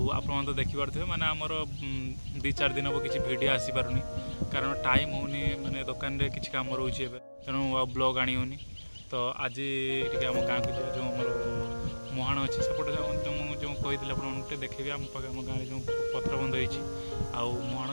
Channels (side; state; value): both; inverted; correlation -1.00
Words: तो देखिपे मैंने आमर 2-4 दिन हम किसी भिड आसीपारूनी कारण टाइम होनी माने दुकान रे किसी काम रोचे तेणु ब्लॉग आनी होनी तो आज टे आम गाँव को जो आम मुहाण अच्छी सेपटे जो कही आपटे देखेबी आम गाँव जो पथर बंध हो